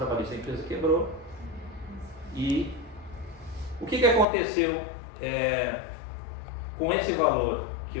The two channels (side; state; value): right; drops out; at 4.2 s